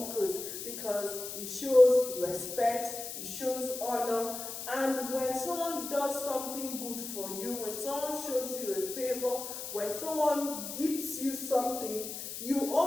because it shows respect, it shows honor. And when someone does something good for you, when someone shows you a favor, when someone gives you something, you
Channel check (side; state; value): left; noise; hiss, 7 dB below the sound